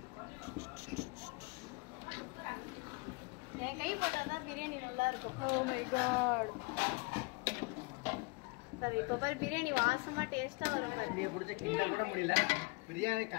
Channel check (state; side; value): quieter; right; 28.4 dB